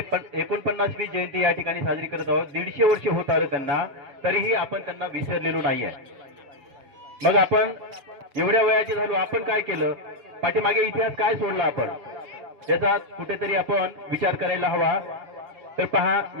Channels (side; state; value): left; late; 7.1 ms